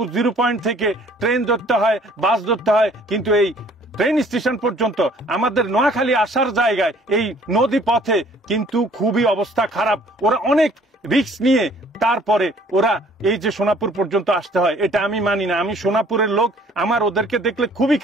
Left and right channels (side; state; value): both; normal; correlation 0.56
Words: 0 পয়েন্ট থেকে ট্রেন ধরতে হয়, বাস ধরতে হয়। কিন্তু এই ট্রেন স্টেশন পর্যন্ত আমাদের নোয়াখালী আসার জায়গায় এই নদী পথে কিন্তু খুবই অবস্থা খারাপ। ওরা অনেক রিস্ক নিয়ে তারপরে ওরা এই যে সোনাপুর পর্যন্ত আসতে হয়, এটা আমি মানি না। আমি সোনাপুরের লোক, আমার ওদেরকে দেখলে খুবই